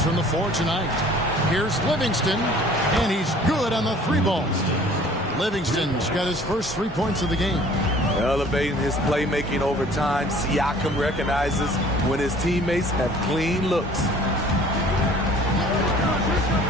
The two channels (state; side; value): normal; both; correlation 0.51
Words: from the floor tonight. Here's Livingston, and he's good on the 3 balls. Livingston's got his first 3 points of the game. Elevating his playmaking over time, Siakam recognizes when his teammates have clean looks.